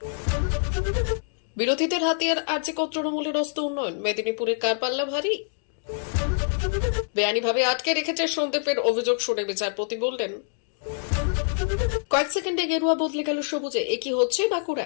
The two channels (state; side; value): silent; right; digital silence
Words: বিরোধীদের হাতিয়ার আর্যিকর তৃণমূলের অস্ত্র উন্নয়ন, মেদিনীপুরের কারপাল্লা ভারী। বেআইনিভাবে আটকে রেখেছে সন্দীপের অভিযোগ শুনে বিচারপতি বললেন, কয়েক সেকেন্ডে গেরুয়া বদলে গেল সবুজে। একই হচ্ছে